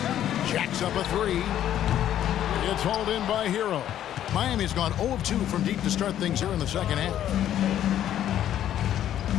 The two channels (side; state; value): right; quieter; 11.2 dB